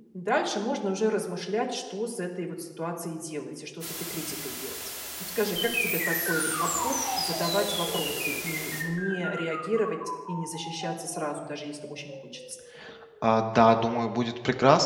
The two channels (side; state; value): both; identical; correlation 1.00